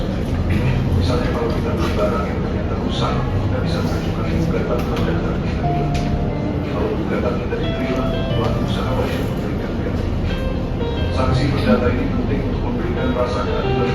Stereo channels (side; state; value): both; identical; correlation 1.00